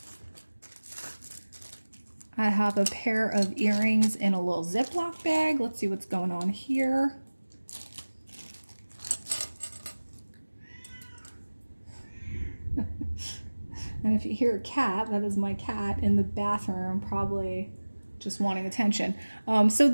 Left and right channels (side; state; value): both; inverted; correlation -1.00